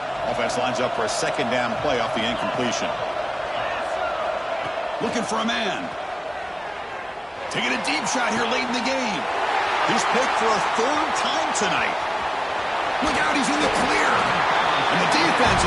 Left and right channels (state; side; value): identical; both; correlation 1.00